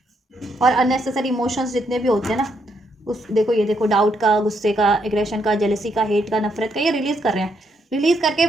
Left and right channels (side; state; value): both; normal; correlation 0.76